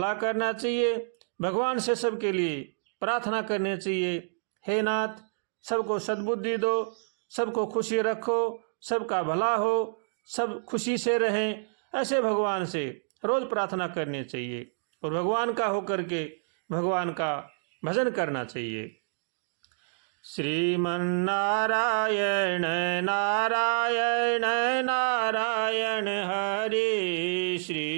करना चाहिए, भगवान से सबके लिए प्रार्थना करनी चाहिए। हे नाथ, सबको सद्बुद्धि दो, सबको खुशी रखो, सबका भला हो, सब खुशी से रहें, ऐसे भगवान से रोज़ प्रार्थना करनी चाहिए और भगवान का होकर के भगवान का भजन करना चाहिए। श्रीमन्नारायण नारायण नारायण हरे,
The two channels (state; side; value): silent; left; digital silence